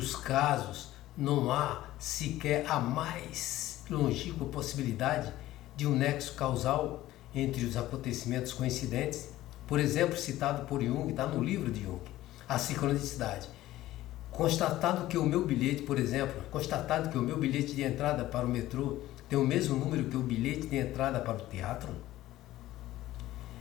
casos, não há sequer a mais longínqua possibilidade de um nexo causal entre os acontecimentos coincidentes. Por exemplo, citado por Jung, está no livro de Jung, a sincronicidade. Constatado que o meu bilhete de entrada para o metrô tem o mesmo número que o bilhete de entrada para o teatro,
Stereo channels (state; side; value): quieter; right; 15.4 dB